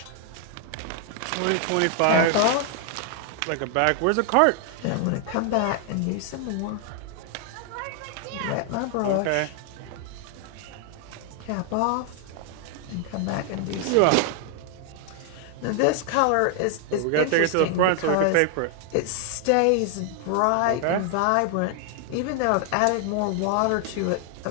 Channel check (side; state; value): both; different; correlation 0.00